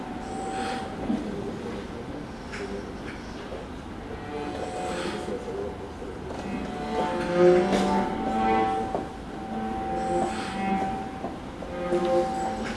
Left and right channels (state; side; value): identical; both; correlation 1.00